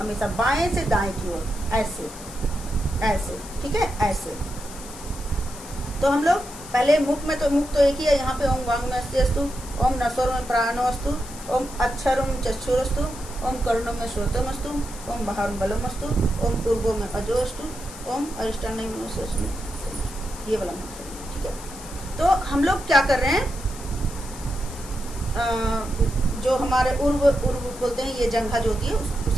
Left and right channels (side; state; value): left; noise; hiss, 15 dB below the sound